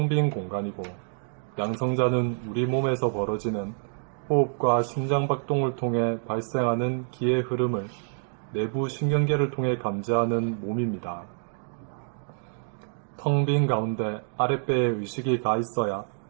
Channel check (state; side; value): silent; left; digital silence